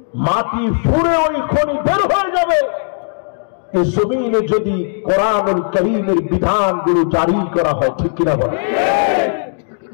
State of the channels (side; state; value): right; silent; digital silence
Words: মাটি ফুঁড়ে ওই খনি বের হয়ে যাবে। এই জমিনে যদি কোরআনুল কারীমের বিধানগুলো জারি করা হয়, ঠিক কিনা বলে?